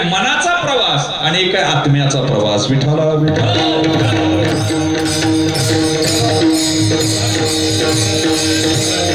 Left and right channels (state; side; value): noise; right; rumble, 24 dB below the sound